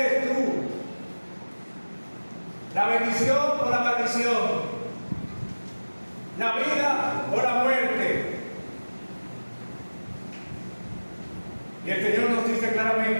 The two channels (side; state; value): both; inverted; correlation -1.00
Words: tú? ¿La bendición o la maldición? ¿La vida o la muerte? Y el Señor nos dice